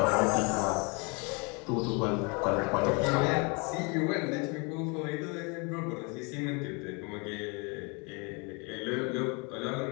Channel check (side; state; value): right; quieter; 31.6 dB